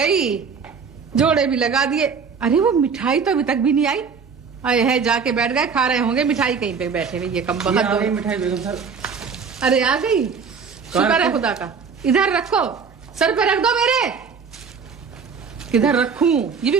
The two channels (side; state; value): left; quieter; 5.8 dB